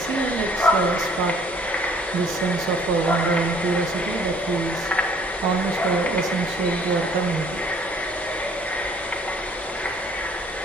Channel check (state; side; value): normal; both; correlation 0.57